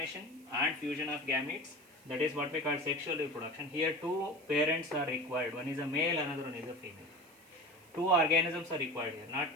and fusion of gametes, that is what we call sexual reproduction. Here two parents are required. One is a male, another one is a female. two organisms are required here, not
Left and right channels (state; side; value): noise; right; hiss, 27 dB below the sound